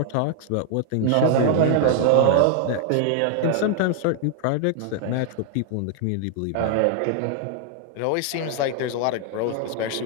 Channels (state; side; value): different; both; correlation 0.00